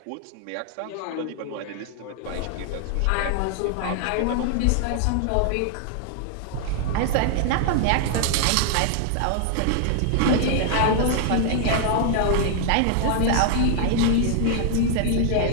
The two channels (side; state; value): both; different; correlation 0.00